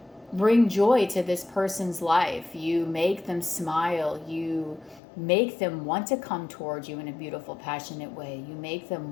bring joy to this person's life. You make them smile. You make them want to come towards you in a beautiful, passionate way. You make them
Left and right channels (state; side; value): drops out; right; at 5.0 s